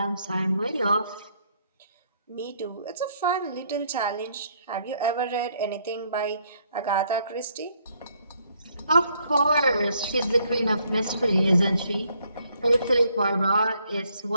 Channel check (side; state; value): both; inverted; correlation -0.69